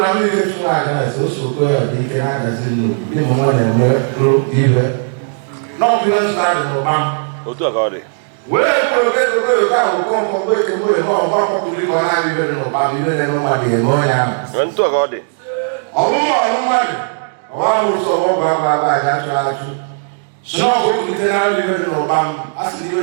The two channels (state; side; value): silent; left; digital silence